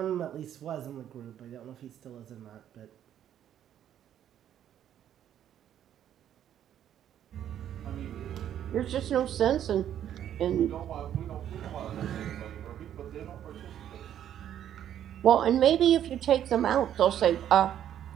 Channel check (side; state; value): left; quieter; 10.5 dB